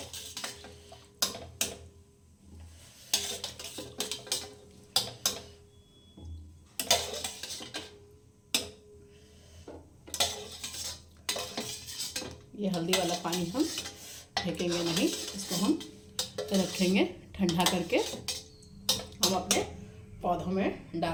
ये हल्दी वाला पानी हम फेंकेंगे नहीं, इसको हम रखेंगे ठंडा करके, हम अपने पौधों में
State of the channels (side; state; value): both; identical; correlation 1.00